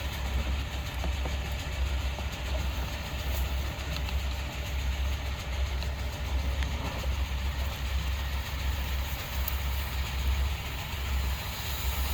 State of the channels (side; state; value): both; identical; correlation 1.00